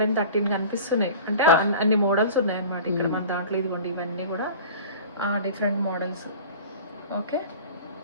కనిపిస్తున్నాయి. అంటే అన్ని మోడల్స్ ఉన్నాయి అన్నమాట ఇక్కడ మన దాంట్లో. ఇదిగోండి, ఇవన్నీ కూడా డిఫరెంట్ మోడల్స్. ఓకే,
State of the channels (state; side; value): inverted; both; correlation -0.40